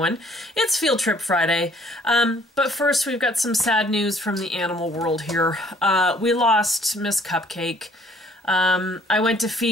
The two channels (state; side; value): normal; both; correlation 0.60